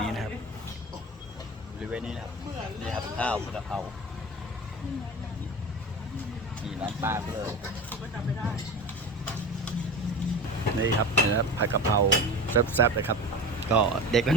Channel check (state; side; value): normal; both; correlation 0.31